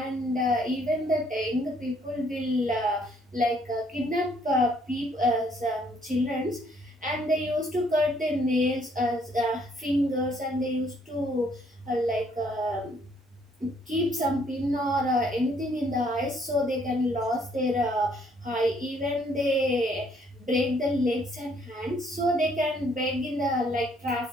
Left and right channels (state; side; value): normal; both; correlation 0.65